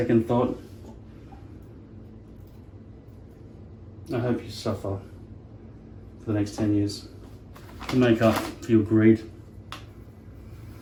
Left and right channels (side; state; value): both; identical; correlation 1.00